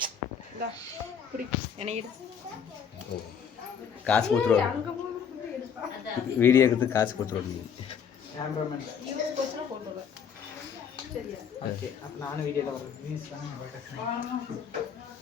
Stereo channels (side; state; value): right; quieter; 7.3 dB